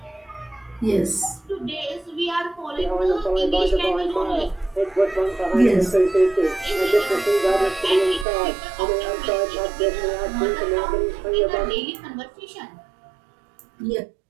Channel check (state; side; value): drops out; left; at 8.2 s